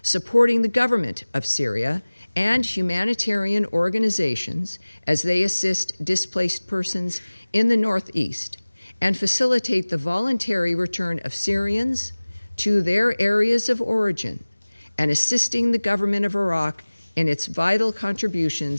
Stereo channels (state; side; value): inverted; both; correlation -1.00